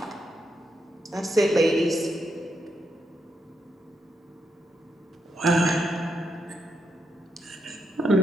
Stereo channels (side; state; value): both; normal; correlation 0.82